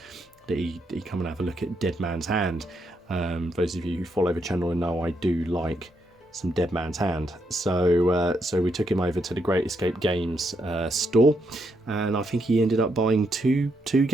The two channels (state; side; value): normal; both; correlation 0.78